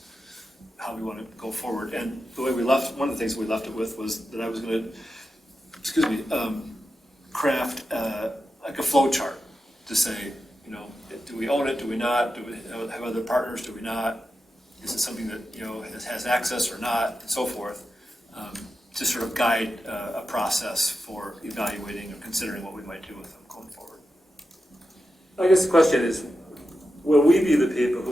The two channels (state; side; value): normal; both; correlation 0.90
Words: How we want to go forward? And the way we left, one of the things we left it with was that I was going to, craft like a flow chart to say, do we own it? Do we not? Do we have other partners? Do we not? Is it something that has access or not, and so forth, to sort of guide a process for evaluating or considering what we might do with them going forward. I guess the question is, will we be the people